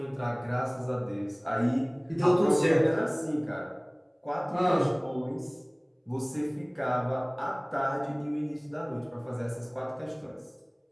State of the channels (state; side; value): identical; both; correlation 1.00